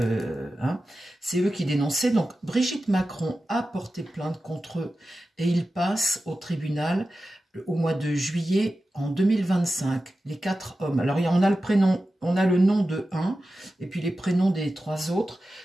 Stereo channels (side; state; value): both; normal; correlation 0.93